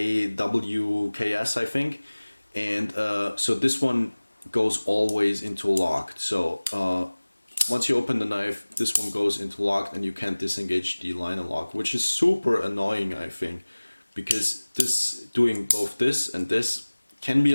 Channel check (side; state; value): both; inverted; correlation -1.00